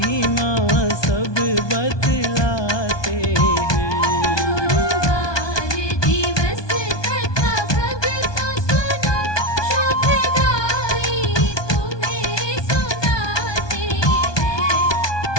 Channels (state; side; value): late; right; 1.2 ms